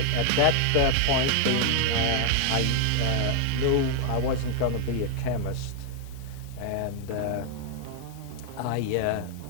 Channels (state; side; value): different; both; correlation 0.00